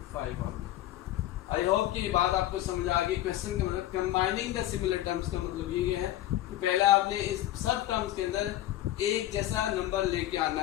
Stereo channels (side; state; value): right; quieter; 14.1 dB